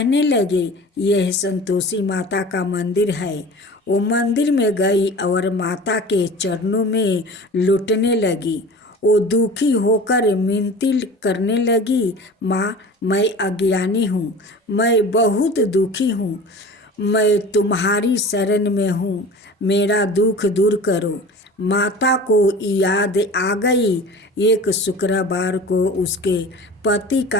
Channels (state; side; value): normal; both; correlation 0.38